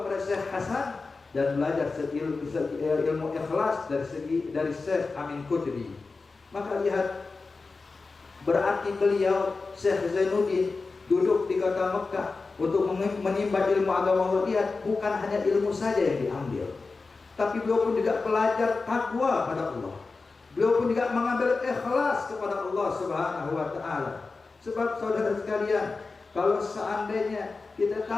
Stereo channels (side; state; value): right; quieter; 4.0 dB